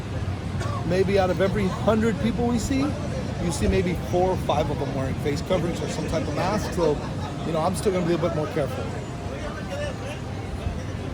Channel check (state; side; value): identical; both; correlation 1.00